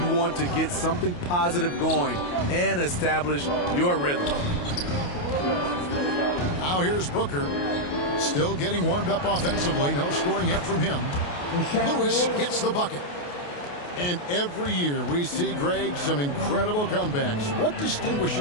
want to get something positive going and establish your rhythm. Now here's Booker. Still getting warmed up offensively. No scoring yet from him. Lewis gets the bucket. And every year we see, Greg, some incredible comebacks. What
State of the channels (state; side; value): late; right; 28 ms